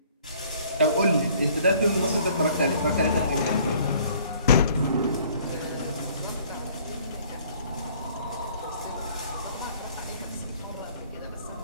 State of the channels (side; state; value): both; inverted; correlation -0.57